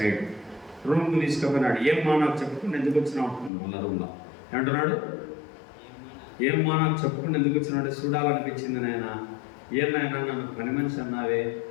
రూమ్కి తీసుకుపోయినాడు. ఏమ్మా నాకు చెప్పుకుని ఎందుకు వచ్చినావు అంటున్నాడు. వాళ్ళ రూమ్లో ఏమంటున్నాడు? ఏమ్మా నాకు చెప్పుకుని ఎందుకు వచ్చినాడు? చూడాలనిపించింది నాయన. ఏమైనా నన్ను పని మనిషి అన్నావే,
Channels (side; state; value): right; drops out; at 3.5 s